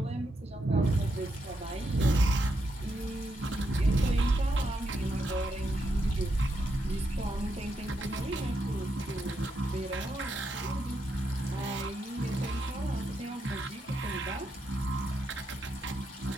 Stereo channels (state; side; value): normal; both; correlation 0.81